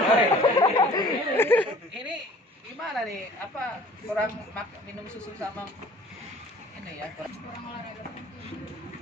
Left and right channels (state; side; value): normal; both; correlation 0.50